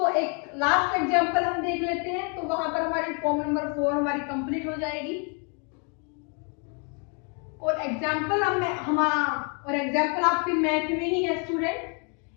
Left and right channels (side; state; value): right; quieter; 37.6 dB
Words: एक लास्ट एग्जांपल हम देख लेते हैं, तो वहां पर हमारी फॉर्म नंबर 4 हमारी कंप्लीट हो जाएगी और एग्जांपल एग्जांपल आपके मैथ में ही है